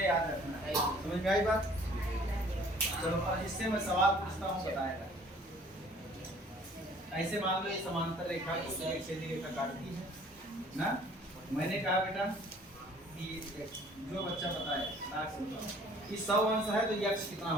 याद रखना है, समझ में आई बात। चलो अब इससे मैं सवाल पूछता हूँ, बताएगा। ऐसे मान लो ये समांतर रेखा को एक सीधी रेखा काटती है ना। मैंने कहा बेटा कि जो बच्चा बताए ताक से बताओ कि 100 अंश है तो यक्ष कितना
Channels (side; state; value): both; normal; correlation 0.54